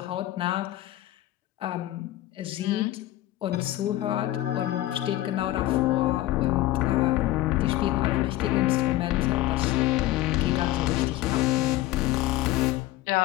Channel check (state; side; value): quieter; right; 15.6 dB